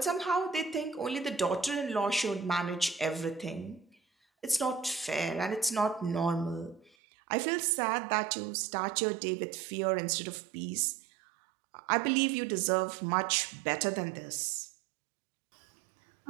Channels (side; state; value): left; drops out; at 6.9 s